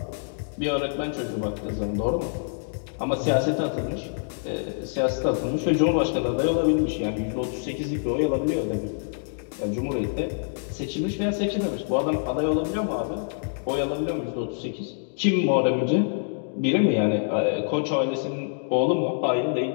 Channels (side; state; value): right; silent; digital silence